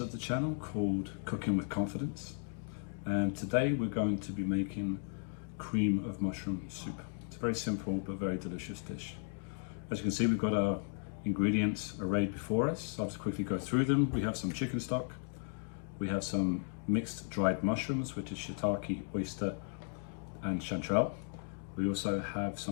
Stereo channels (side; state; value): right; silent; 54 dB below the other